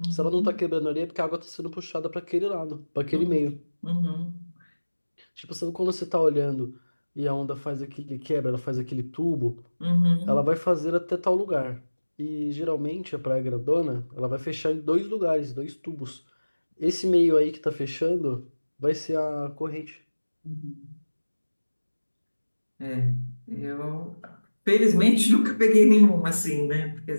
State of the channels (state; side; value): inverted; both; correlation -1.00